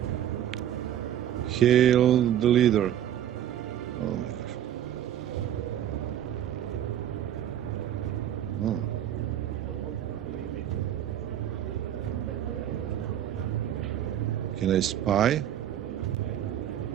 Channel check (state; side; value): quieter; left; 11.0 dB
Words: Hail the leader. Oh my gosh. Oh. Can I spy?